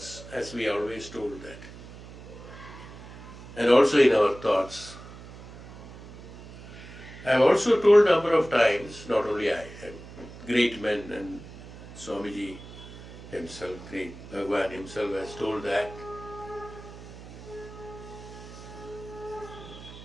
as we always told that. And also in our thoughts. I have also told a number of times, not only I, and great men, and Swamiji himself, great Bhagwan himself has told that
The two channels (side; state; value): right; noise; hum, 16 dB below the sound